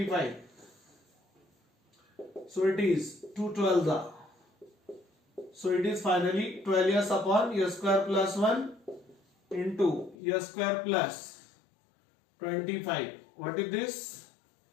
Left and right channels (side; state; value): right; drops out; at 10.2 s